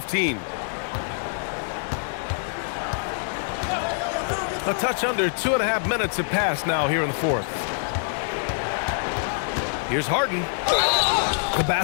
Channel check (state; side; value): silent; right; digital silence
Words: A touch under 2.5 minutes have passed now here in the fourth. Here's Harden. The